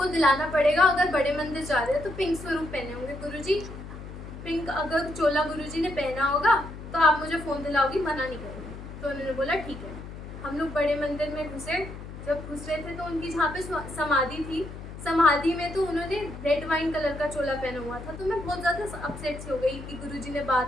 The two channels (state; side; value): noise; left; hum, 12 dB below the sound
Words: दिलाना पड़ेगा, अगर बड़े मंदिर जा रहे हो तो पिंक स्वरूप पहने होंगे गुरुजी, पिंक अगर चोला गुरुजी ने पहना होगा तो आप मुझे फ़ोन दिलाओगी, मना नहीं करोगी। तो उन्होंने बोला ठीक है। हम लोग बड़े मंदिर में घुसे। जब घुस रहे थे तो उनकी जहाँ पे समाधि थी, समाधि में तो उन्होंने रेड वाइन कलर का चोला पहना हुआ था। तो मैं बहुत ज़्यादा अपसेट सी हो गई कि गुरुजी ने